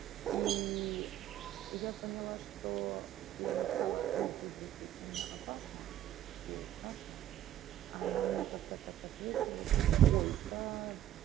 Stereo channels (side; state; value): left; quieter; 12.3 dB